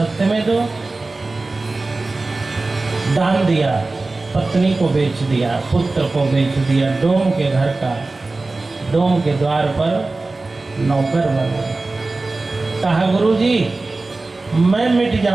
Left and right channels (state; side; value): quieter; left; 3.4 dB